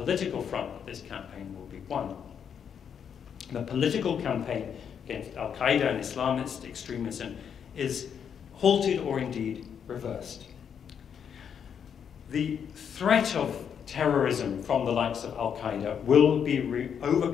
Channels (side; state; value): right; quieter; 7.7 dB